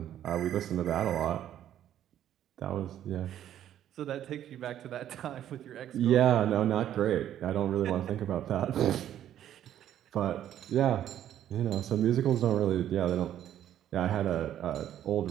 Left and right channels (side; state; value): left; quieter; 11.2 dB